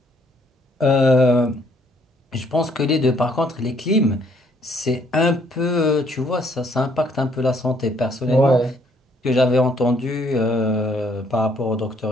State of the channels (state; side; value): normal; both; correlation 0.66